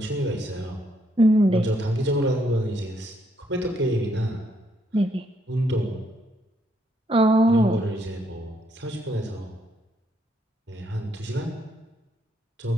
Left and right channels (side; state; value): both; normal; correlation 0.73